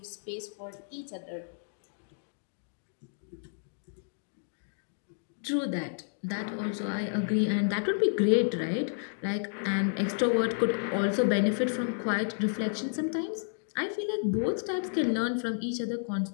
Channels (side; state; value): right; silent; digital silence